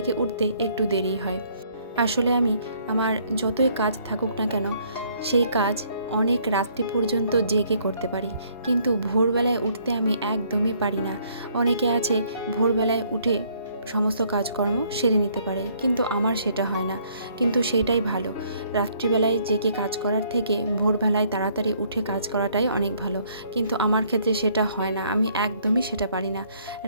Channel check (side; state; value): both; inverted; correlation -0.65